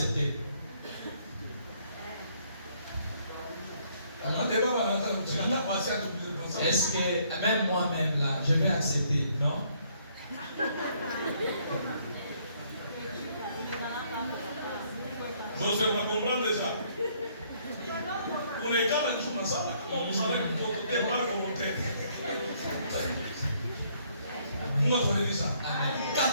Est-ce que même moi-même là, je vais accepter, non? Je vais comprendre déjà. On est quand même dans ça. Comment vous savez que vous êtes mal volontaire? Moi, je vais dire ça.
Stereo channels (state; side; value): inverted; both; correlation -0.67